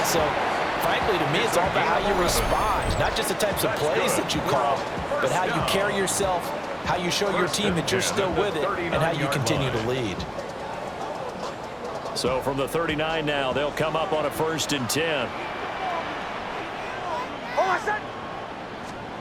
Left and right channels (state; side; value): identical; both; correlation 1.00